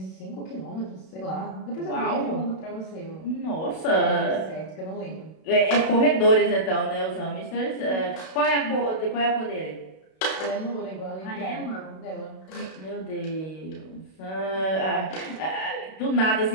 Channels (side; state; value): right; late; 32 ms